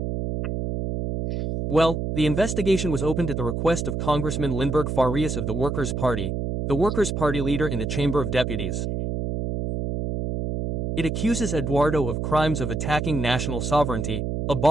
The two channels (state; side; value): noise; right; hum, 2 dB below the sound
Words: Well, the investigation was opened at the request of Congressman Lindbergh Farias of the Workers' Party, the Workers' Party leader in the Chamber of Deputies. It accuses Eduardo of crimes of attacking national sovereignty,